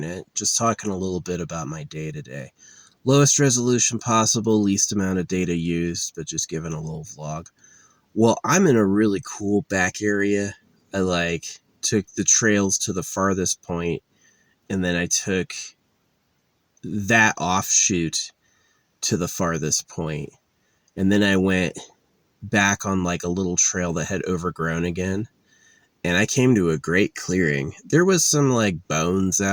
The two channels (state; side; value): identical; both; correlation 1.00